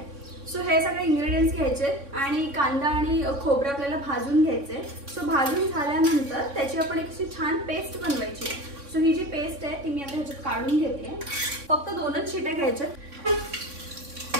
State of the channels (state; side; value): late; left; 3.6 ms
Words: सो हे सगळे इंग्रेडियंट्स घ्यायचे आणि कांदा आणि खोबरं आपल्याला भाजून घ्यायचे. सो भाजून झाल्यानंतर त्याची आपण एक अशी छान पेस्ट बनवायची. सो ही जी पेस्ट आहे ती मी आता ह्याच्यात काढून घेते. फक्त 2च शिट्या घ्यायच्या.